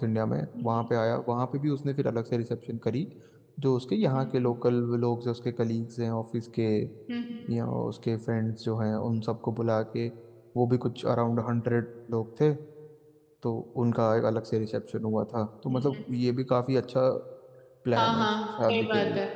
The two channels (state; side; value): identical; both; correlation 1.00